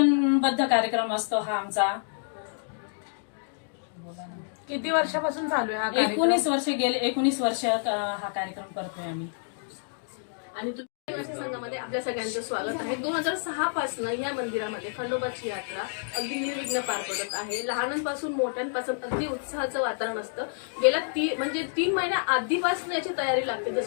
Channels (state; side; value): silent; right; digital silence